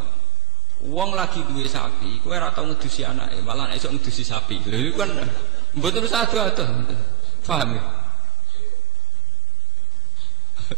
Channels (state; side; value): quieter; left; 6.2 dB